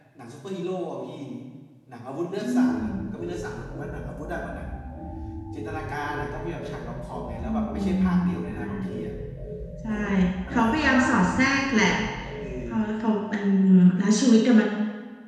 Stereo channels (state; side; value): identical; both; correlation 1.00